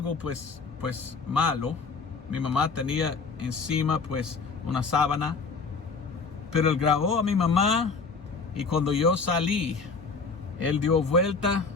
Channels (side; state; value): right; quieter; 4.7 dB